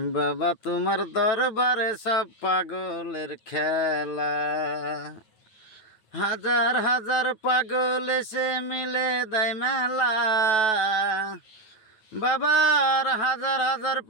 বাবা তোমার দরবারে সব পাগলের খেলা। হাজার হাজার পাগল এসে মিলে দেয় মেলা। বাবার হাজার হাজার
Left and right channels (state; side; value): late; right; 9.2 ms